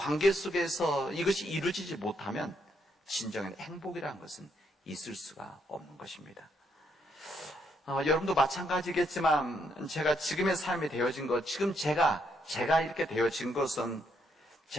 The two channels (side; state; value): both; normal; correlation 0.75